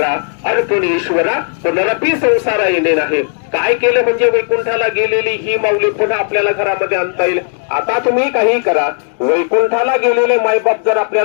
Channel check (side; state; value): right; silent; 60 dB below the other